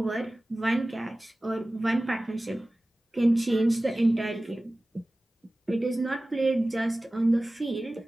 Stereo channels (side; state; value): both; normal; correlation 0.97